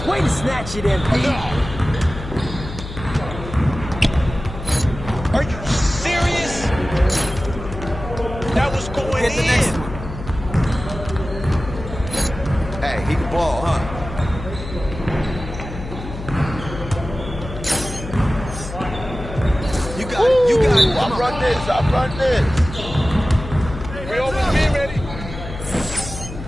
Way to snatch it, MP. Are you serious? That was going Get the in. next one. Hey, he can ball, huh? You got it. You got it. I run this. I run this. We always be ready.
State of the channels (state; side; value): noise; left; hum, 10 dB below the sound